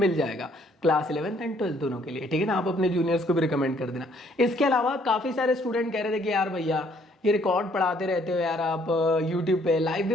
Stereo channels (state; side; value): normal; both; correlation 0.64